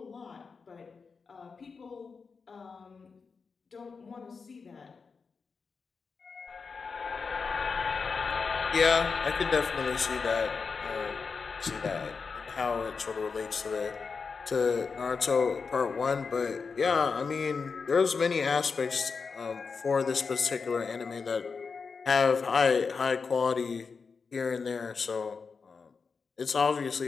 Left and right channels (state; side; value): quieter; right; 5.1 dB